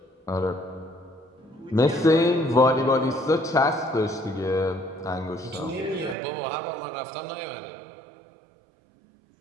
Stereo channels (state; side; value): drops out; left; at 6.2 s